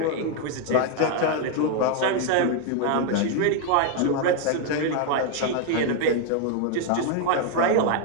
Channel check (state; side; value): different; both; correlation 0.01